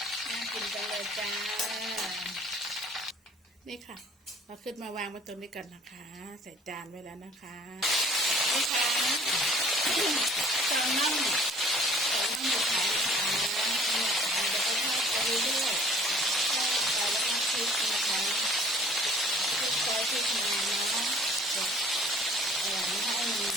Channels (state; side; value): normal; both; correlation 0.52